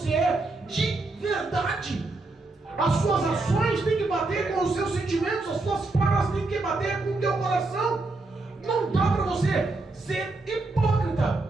é de verdade. As suas ações têm que bater com os seus sentimentos, as suas falas têm que bater com o teu coração. Não dá para você ser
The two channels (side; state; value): left; quieter; 3.2 dB